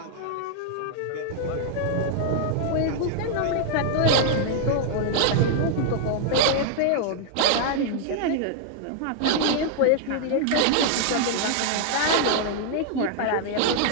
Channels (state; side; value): different; both; correlation 0.00